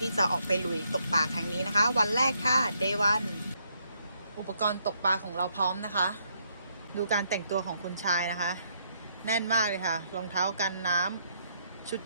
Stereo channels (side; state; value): both; inverted; correlation -0.74